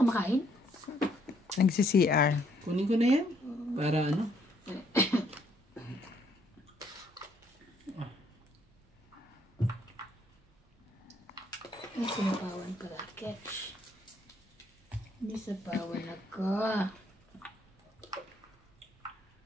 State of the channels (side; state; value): both; normal; correlation 0.68